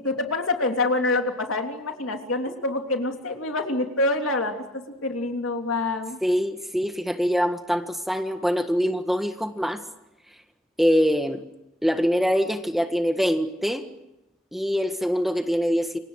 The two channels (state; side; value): normal; both; correlation 0.63